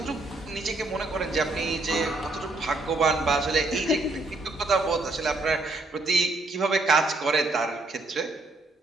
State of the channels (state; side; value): quieter; left; 3.0 dB